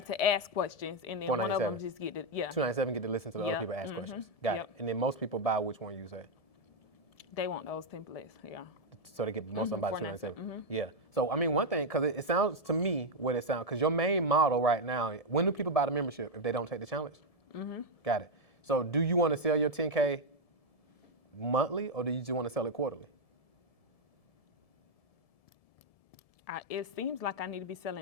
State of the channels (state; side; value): late; right; 1.7 ms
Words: to ask questions, and then one of them just get to, 297 get to listen to the other people ask questions. Got it. And then most people buy which one you say? They want those templates, yeah. So they get most of them by 297. Mm-hmm. Yeah. So I mean, one thing, because it sounds to me what it sounds, because your main model right now, when do people buy the membership if they don't take the challenge? Mm-hmm. Got it. So do you want to sell your 10K monthly, or do you just want to sell it quarterly? It seems like I need to be